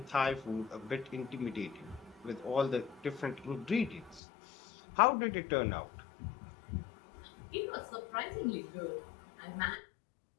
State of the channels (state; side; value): drops out; right; at 4.2 s